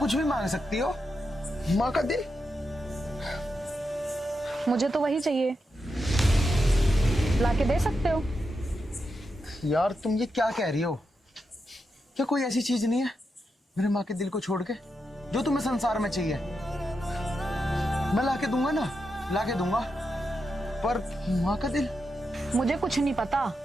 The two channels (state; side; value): normal; both; correlation 0.86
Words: कुछ भी मांग सकती हो, माँ का दिल? मुझे तो वही चाहिए, लाके दे सकते हो। यार तुम ये क्या कह रही हो? क्या कोई ऐसी चीज नहीं है मेरे माँ के दिल को छोड़ के जो तुम्हें संसार में चाहिए? मैं लाके दूंगा ना, लाके दूंगा, पर माँ का दिल? मुझे कुछ नहीं पता।